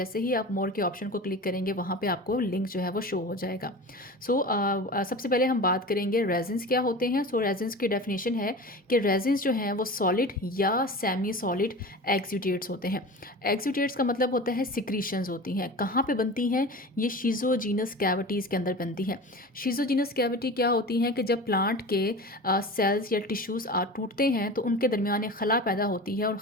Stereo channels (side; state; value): both; normal; correlation 0.33